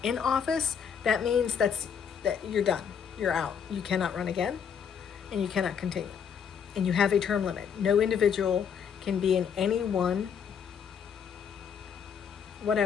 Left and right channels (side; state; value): right; quieter; 7.4 dB